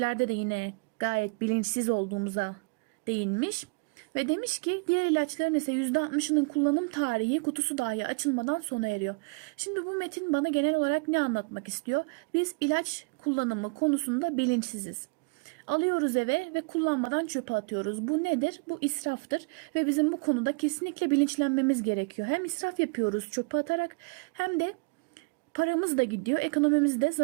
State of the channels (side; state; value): left; quieter; 32.5 dB